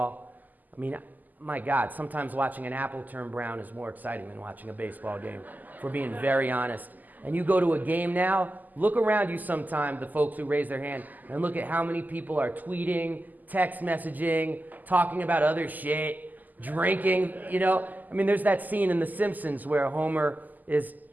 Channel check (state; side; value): late; left; 0.083 ms